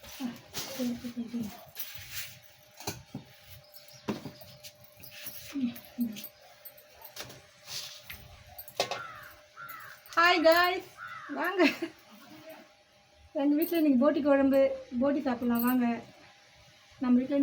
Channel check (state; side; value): identical; both; correlation 1.00